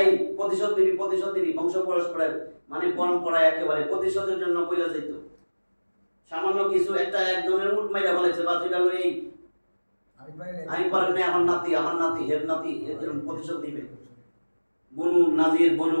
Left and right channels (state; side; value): inverted; both; correlation -1.00